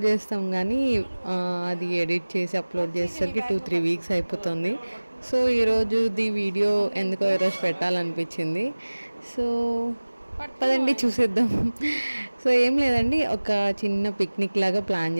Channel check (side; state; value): both; inverted; correlation -1.00